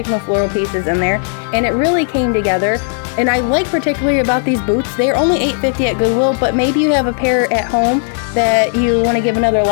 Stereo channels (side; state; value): right; silent; 70 dB below the other